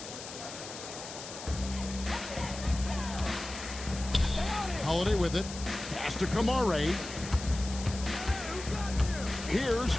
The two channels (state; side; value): noise; left; hiss, 11 dB below the sound